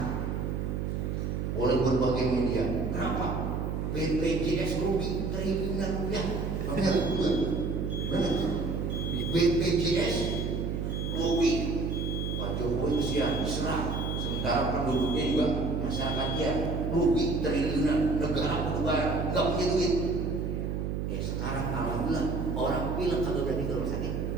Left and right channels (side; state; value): right; noise; hum, 2 dB below the sound